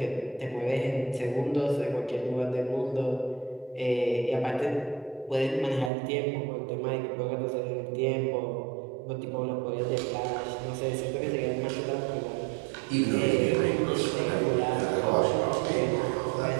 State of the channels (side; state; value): left; drops out; at 5.9 s